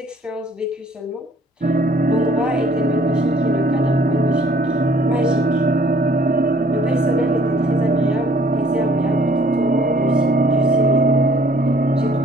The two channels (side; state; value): both; normal; correlation 0.58